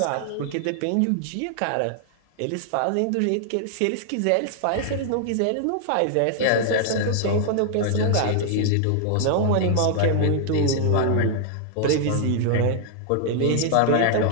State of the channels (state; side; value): different; both; correlation 0.00